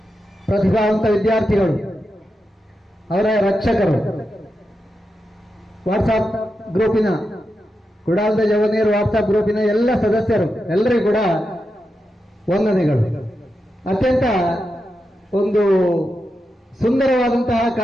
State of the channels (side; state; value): both; normal; correlation 0.88